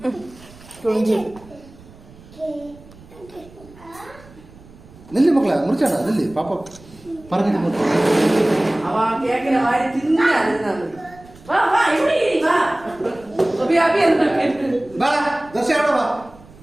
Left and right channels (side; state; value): right; noise; rumble, 23 dB below the sound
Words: तुंजी निल्ली मक्कला मुरचाना निल्ली पापा परमिट मुरचा അവ കേക്കിനെ വാരി തിന്നാണ് വാ വാ ഇവിടെ വാ അബി അബി എന്താ बा दस आड़ो बा